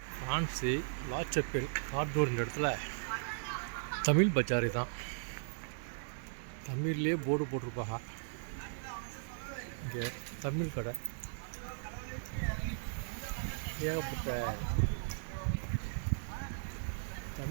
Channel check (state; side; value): silent; left; 53 dB below the other